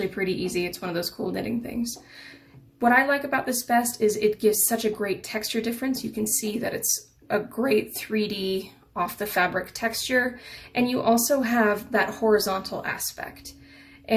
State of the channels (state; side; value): identical; both; correlation 1.00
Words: pretty easy. It's one of those cool knitting things. What I like about this best is it gives such a great texture difference. You can see that it's a great 3D off the fabric texture, and you also have that horizontal aspect.